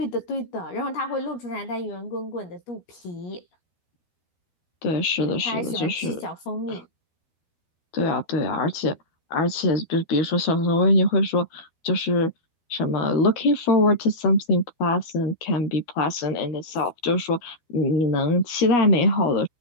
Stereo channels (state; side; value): late; right; 12 ms